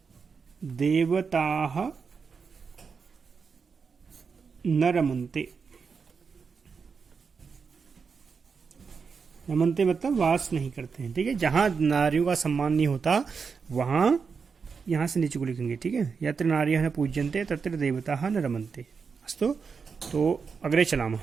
देवताः न रमन्ते। रमन्ते मतलब वास नहीं करते हैं, ठीक है। जहां नारियों का सम्मान नहीं होता वहां, यहां से नीचे को लिखेंगे, ठीक है। यत्र नार्यः न पूज्यन्ते तत्र देवताः न रमन्ते। अस्तु, तो अग्रे चलामः।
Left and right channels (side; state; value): left; quieter; 5.5 dB